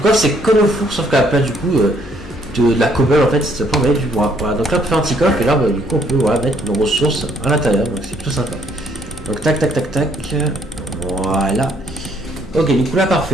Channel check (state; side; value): noise; left; hum, 17 dB below the sound